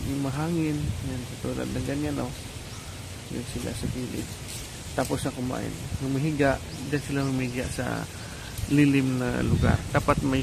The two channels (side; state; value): both; identical; correlation 1.00